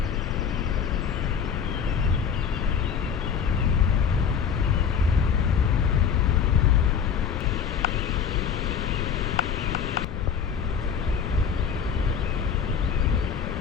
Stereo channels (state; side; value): quieter; right; 7.2 dB